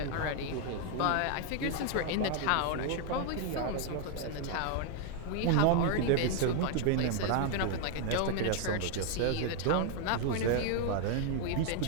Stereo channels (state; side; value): different; both; correlation 0.00